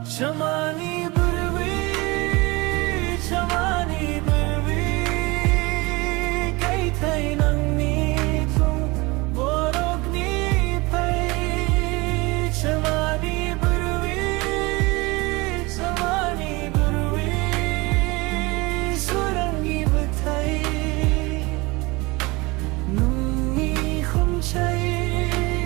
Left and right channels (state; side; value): quieter; left; 24.2 dB